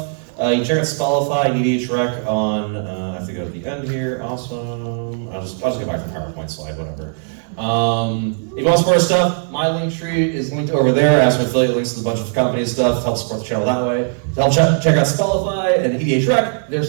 you can check out Spellify and EDHREC on, I have to go to the end here, awesome. I'll just get back to the PowerPoint slide, whatever. If you want to support our stuff, my link tree is linked over there. I have some affiliate links to a bunch of company stuff to help support the channel that way. To help check out Spellify and EDHREC, their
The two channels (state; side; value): silent; left; 62 dB below the other